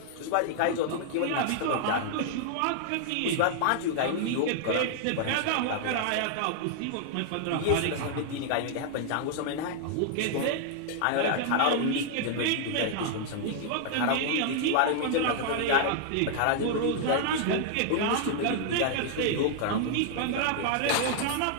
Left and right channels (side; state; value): both; different; correlation 0.00